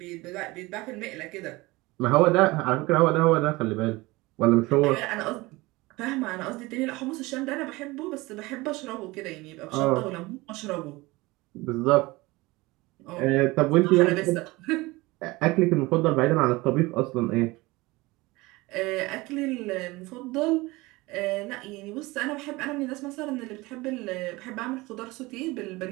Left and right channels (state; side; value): quieter; left; 21.8 dB